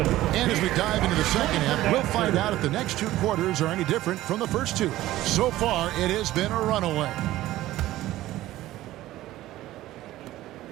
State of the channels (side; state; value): left; quieter; 15.5 dB